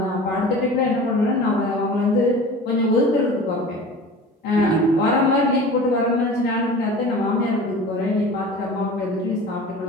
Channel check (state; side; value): normal; both; correlation 0.38